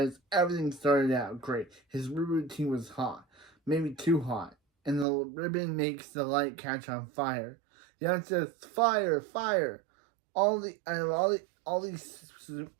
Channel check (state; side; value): drops out; left; at 5.1 s